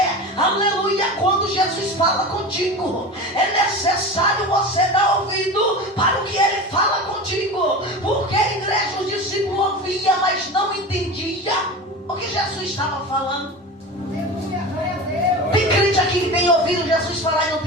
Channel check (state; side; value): normal; both; correlation 0.30